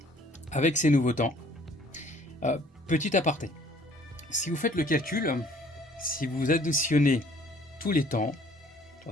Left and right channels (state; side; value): normal; both; correlation 0.57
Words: avec ces nouveaux temps. Petit aparté, si vous faites le calcul, si vous additionnez tous les temps,